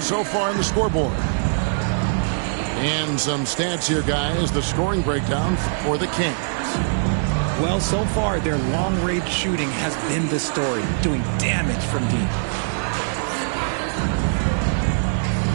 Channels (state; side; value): silent; left; digital silence